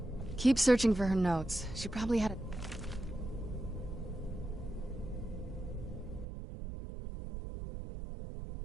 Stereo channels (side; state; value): left; drops out; at 6.2 s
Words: Keep searching for her notes. She probably had a...